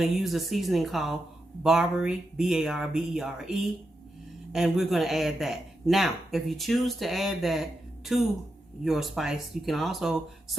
to use a seasoning called Barbary, B-A-R-B-E-R-E. And we're going to add that. Now, if you choose to add that to your spice, you can also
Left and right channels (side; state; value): both; normal; correlation 0.87